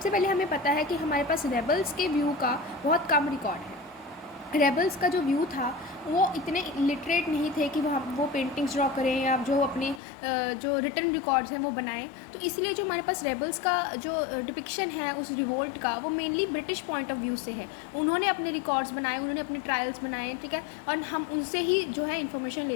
पहले हमें पता है कि हमारे पास रेबल्स के व्यू का बहुत कम रिकॉर्ड है। रेबल्स का जो व्यू था वो इतने लिटरेट नहीं थे कि वो पेंटिंग्स ड्रॉ करें या जो अपने जो रिटन रिकॉर्ड्स हैं वो बनाएं। तो इसलिए जो हमारे पास रेबल्स का जो डिपिक्शन है उस रिवोल्ट का, वो mainly British point of view से है। उन्होंने अपने रिकॉर्ड्स बनाए, उन्होंने अपने ट्रायल्स बनाए, ठीक है, और हम उनसे ही जो है इन्फॉर्मेशन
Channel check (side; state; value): right; drops out; at 10.0 s